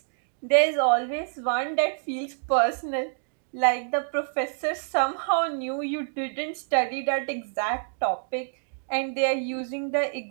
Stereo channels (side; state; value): left; silent; digital silence